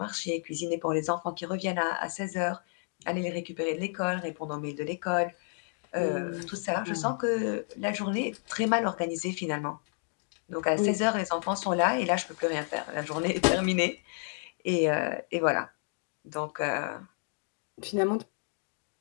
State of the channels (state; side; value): silent; right; 57 dB below the other